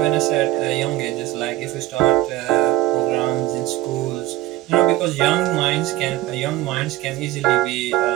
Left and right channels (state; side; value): quieter; left; 16.0 dB